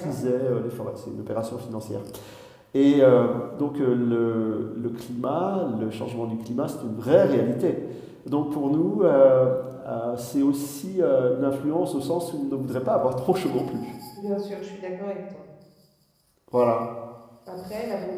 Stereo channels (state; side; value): identical; both; correlation 1.00